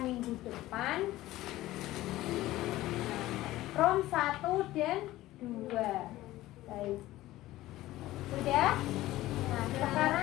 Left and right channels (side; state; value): right; quieter; 16.3 dB